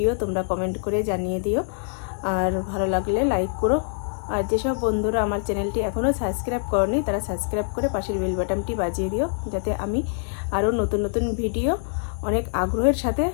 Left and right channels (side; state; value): right; silent; digital silence